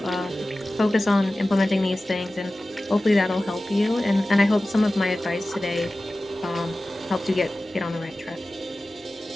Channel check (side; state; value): both; normal; correlation 0.96